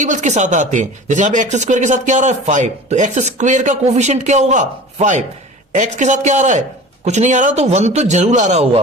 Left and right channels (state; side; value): normal; both; correlation 0.39